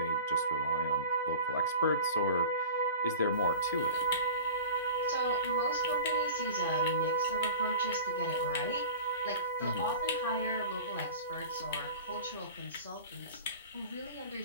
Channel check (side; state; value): both; inverted; correlation -0.38